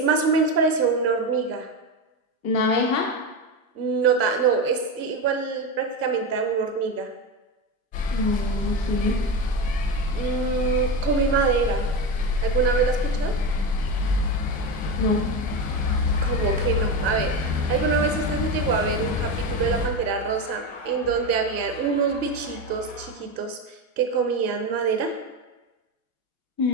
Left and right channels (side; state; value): left; late; 1.5 ms